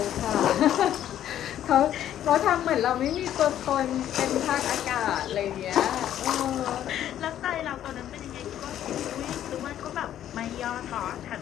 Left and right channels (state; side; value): quieter; right; 11.3 dB